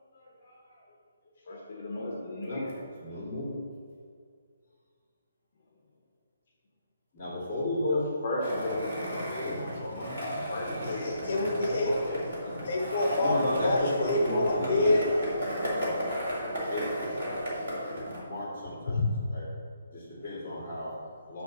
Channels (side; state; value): both; inverted; correlation -0.74